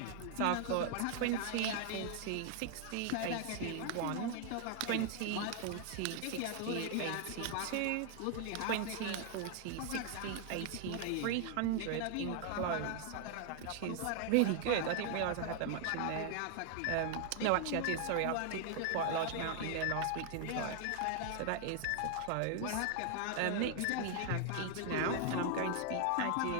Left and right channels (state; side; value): different; both; correlation 0.00